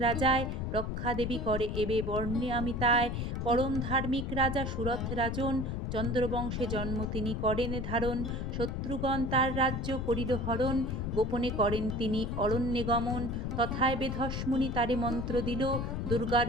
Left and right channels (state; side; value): noise; left; rumble, 3 dB below the sound